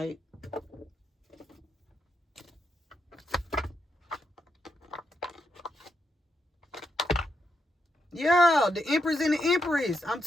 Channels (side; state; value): both; normal; correlation 0.82